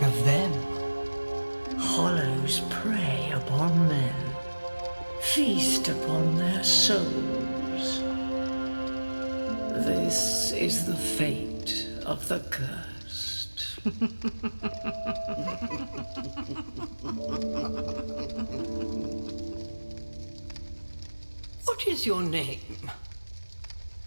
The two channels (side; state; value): both; inverted; correlation -1.00